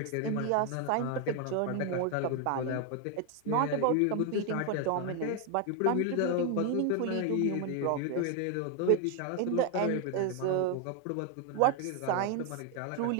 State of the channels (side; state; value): both; different; correlation 0.01